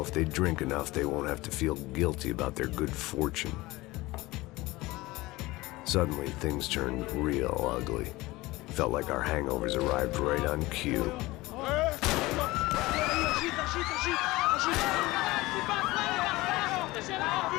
if they drink enough, they won't have to feel guilty about their good fortune. Suddenly, things turned real ugly. Felt like our hangovers arrived right on cue.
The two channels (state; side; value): quieter; right; 20.1 dB